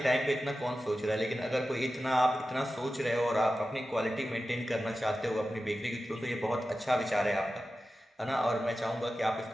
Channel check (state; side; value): normal; both; correlation 0.93